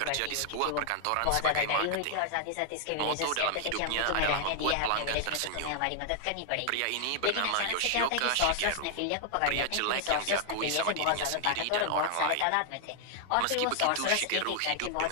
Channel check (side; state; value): both; different; correlation 0.00